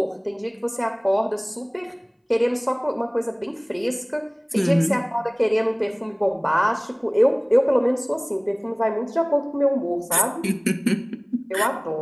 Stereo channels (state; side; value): identical; both; correlation 1.00